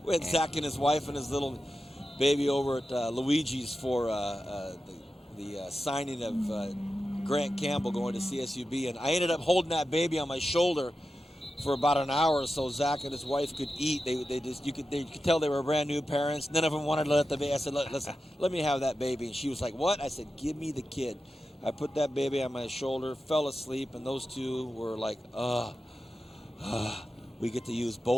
We had Zach and his wife and his little baby over at Luigi's for the signing of Grant Campbell going to CSUB, and I ended up holding that baby on my shoulder for about an hour so Zach and his wife could eat. You could tell they were brand new parents. None of them wanted to let the baby. I said, listen, let me have that baby. And she was like, what? I said, give me the kid. I put that baby on my shoulder, fell asleep, and those two were like, we get to use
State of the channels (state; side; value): normal; both; correlation 0.92